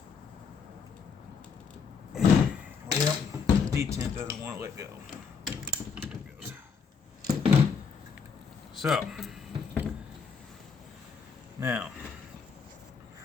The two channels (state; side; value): quieter; right; 5.8 dB